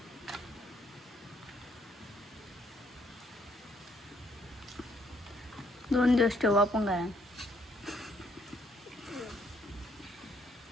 दोन दिवस ठेवू आपण काय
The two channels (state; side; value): normal; both; correlation 0.69